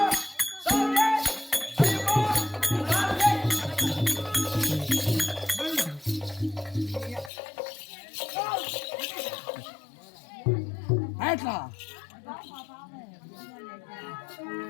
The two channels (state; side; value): drops out; right; at 7.3 s